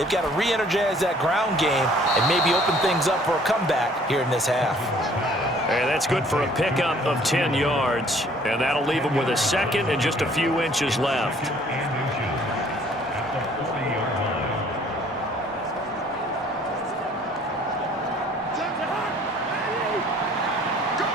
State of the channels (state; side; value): normal; both; correlation 0.57